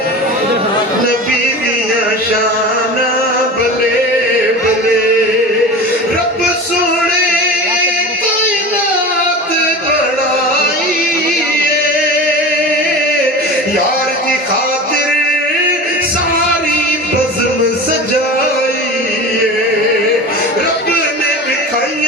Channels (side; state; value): both; normal; correlation 0.32